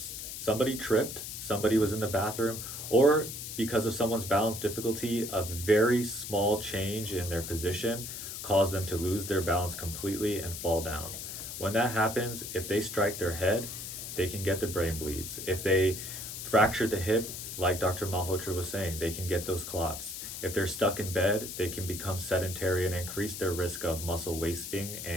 Somebody tripped, somebody was in the bathroom, or because of someone's balance difficulty, a very small change in their position caused them to lose their balance completely and fall down. When that happens, if they strike their head, they can get the brain bleeds. If they fracture the hip, like Dr. Malhotra was saying, they can get those clots. If they're stuck in bed, they can become sedentary and increase their risk of muscle wasting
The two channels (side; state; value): left; noise; hiss, 8 dB below the sound